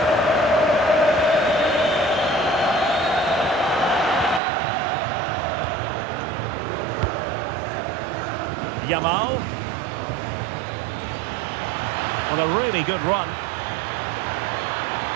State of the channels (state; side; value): drops out; left; at 4.4 s